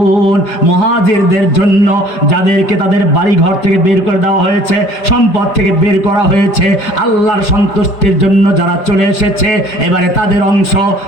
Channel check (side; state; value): right; late; 5.1 ms